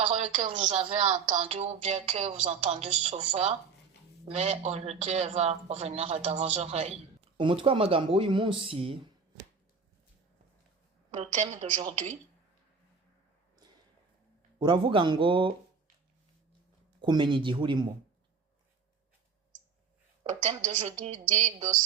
que vous avez entendue ou bien que vous entendez souvent, mais aujourd'hui elle va revenir dans vos oreilles. Umutwe w'amagambo w'uyu munsi Le thème d'aujourd'hui uravuga ngo kumenya igihe urimo. Le thème d'aujourd'hui dit de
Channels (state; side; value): quieter; left; 5.4 dB